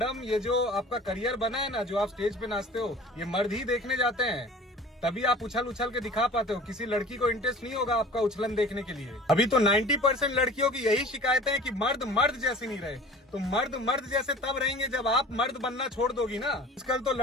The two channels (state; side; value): normal; both; correlation 0.43